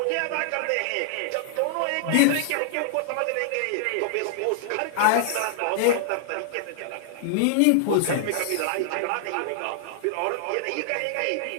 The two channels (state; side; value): different; both; correlation -0.01